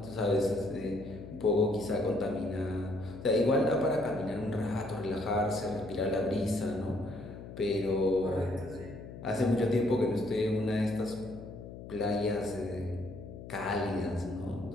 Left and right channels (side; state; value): left; noise; hum, 12 dB below the sound